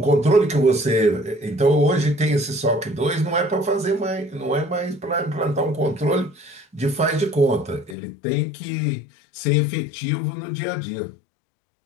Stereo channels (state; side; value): drops out; right; at 8.0 s